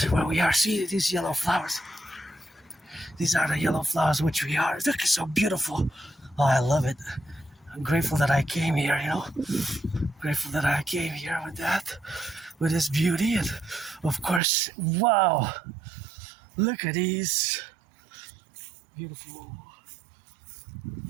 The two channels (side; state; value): left; drops out; at 14.4 s